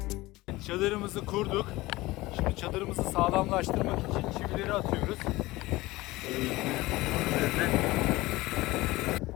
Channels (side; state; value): right; quieter; 19.6 dB